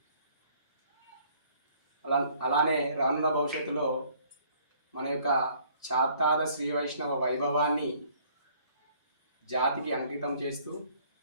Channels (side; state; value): both; inverted; correlation -0.60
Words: అలానే రానున్న భవిష్యత్తులో మన యొక్క చాత్తాద శ్రీ వైష్ణవ వైభవాన్ని జాతికి అంకితం చేస్తూ